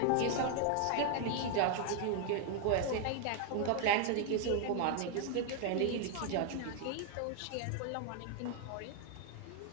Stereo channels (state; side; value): different; both; correlation 0.00